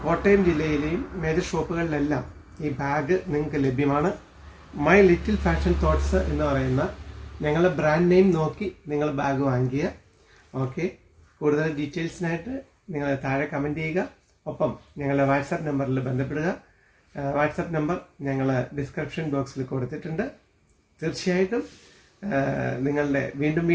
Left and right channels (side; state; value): both; identical; correlation 1.00